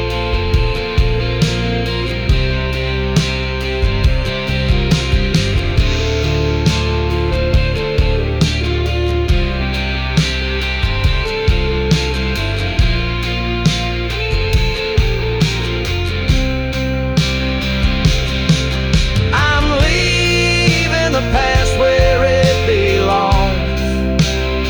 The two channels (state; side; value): identical; both; correlation 1.00